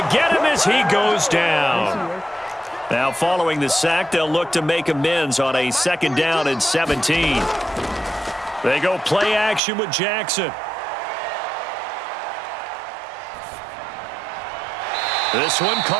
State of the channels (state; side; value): drops out; left; at 9.6 s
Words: to get him as he goes down. Now following the sack, they'll look to make amends on a 2nd down and 17. They go play action with Jackson. This one